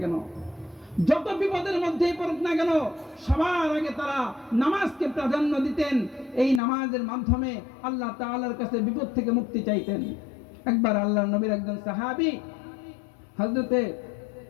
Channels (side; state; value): right; drops out; at 6.6 s